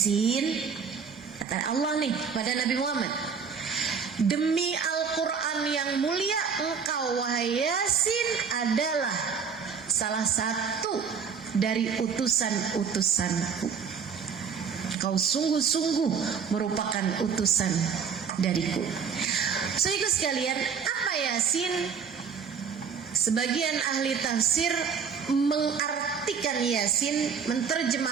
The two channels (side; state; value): left; quieter; 6.2 dB